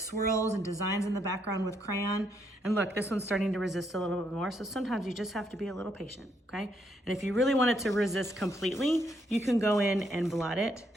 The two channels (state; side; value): normal; both; correlation 0.74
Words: and designs in the background with crayon, and look, this one's starting to resist a little bit more, so sometimes you just have to be a little patient, okay? And if you really want it to resist completely, you can go in and blot it